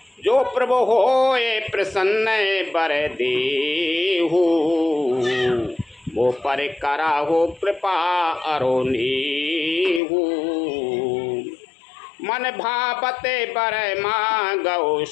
जो प्रभु हो ये प्रसन्न बर देहु, वो पर करा हो कृपा अरोनीहु। मन भावते बर मांगो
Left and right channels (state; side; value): drops out; right; at 10.0 s